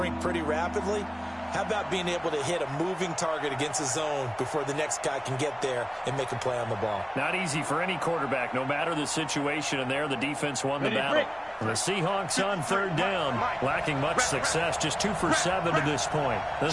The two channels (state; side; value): identical; both; correlation 1.00